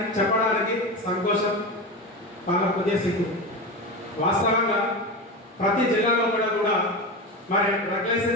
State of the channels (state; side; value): normal; both; correlation 0.22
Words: చెప్పడానికి సంతోషం, వాళ్ళ కొద్దిగా సిగ్గు. వాస్తవంగా ప్రతి జిల్లాలో కూడా మరి డ్రగ్